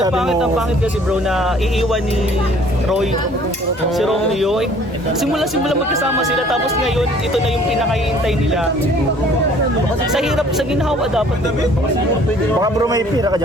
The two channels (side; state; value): both; normal; correlation 0.55